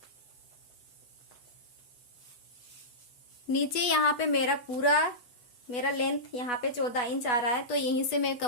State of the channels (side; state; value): right; late; 8.2 ms